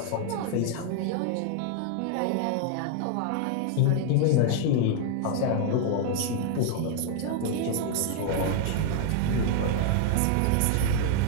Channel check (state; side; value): different; both; correlation 0.00